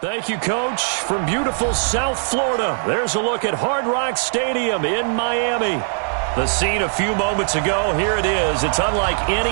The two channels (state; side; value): silent; left; 61 dB below the other